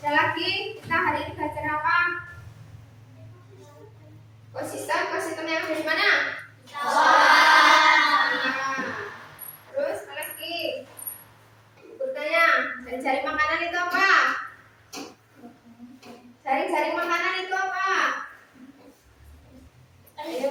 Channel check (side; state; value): both; identical; correlation 1.00